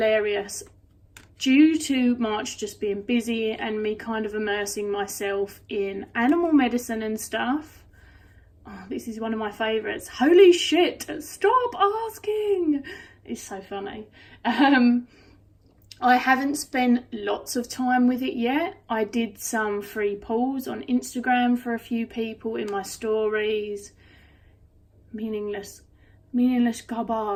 Due to March just being busy and me kind of immersing myself in animal medicine and stuff. Oh, this is one of my favourites. Holy shit, stop asking. It's so funny. I haven't spent lots of time with it yet. I did some free pulls on Instagram for a few people in my stories. Meaningless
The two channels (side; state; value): both; identical; correlation 1.00